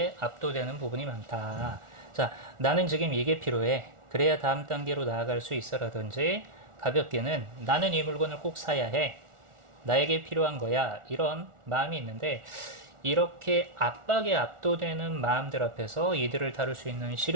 압도되는 부분이 많다. 자, 나는 지금 이게 필요해. 그래야 다음 단계로 나아갈 수 있어라든지, 가볍게는 나는 이 물건을 꼭 사야 해. 나에게 필요한 거야. 이런 마음이 있는데, 이렇게 압박에 압도되는 마음들 앞에서 이들을 다룰 수 있는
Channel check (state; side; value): late; left; 1.4 ms